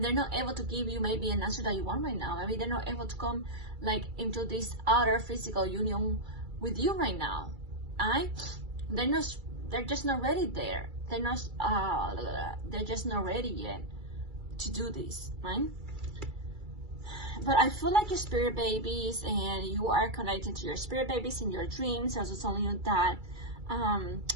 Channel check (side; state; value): left; late; 2.3 ms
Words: they're not able to give you maybe an answer that you want right now. Maybe they're not able to come like into this outer physical union with you right now. Right? They're just not ready there. They're just not ready yet to do this, right? But I feel like your spirit babies, and you are connected to your spirit babies in your dreams. I was telling you that